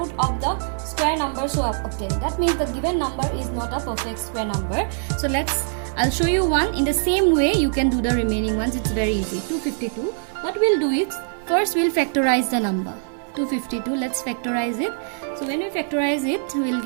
of the square number so obtained. That means the given number is not a perfect square number. So I'll show you one. In the same way you can do the remaining ones. It's very easy. 252. What we'll do is, first we'll factorize the number 252. Let's factorize it. So when we factorize it, we'll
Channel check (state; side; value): silent; left; 63 dB below the other